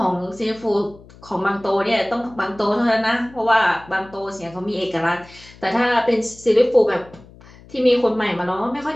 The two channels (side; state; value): left; noise; hum, 23 dB below the sound